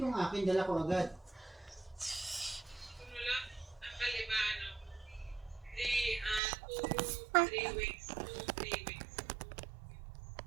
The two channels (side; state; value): left; drops out; at 6.4 s